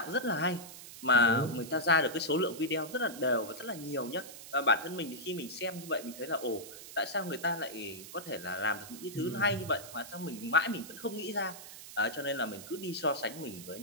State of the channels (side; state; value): right; noise; hiss, 14 dB below the sound